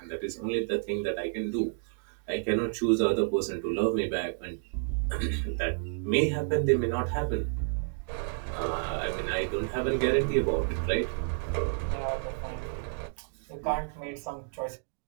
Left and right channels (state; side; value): silent; left; digital silence